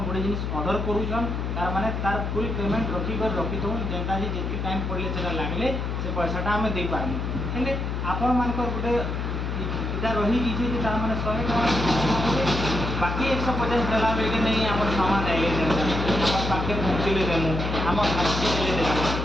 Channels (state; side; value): noise; left; hum, 2 dB below the sound